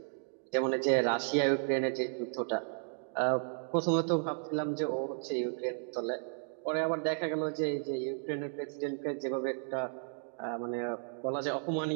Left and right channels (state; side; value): silent; left; 55 dB below the other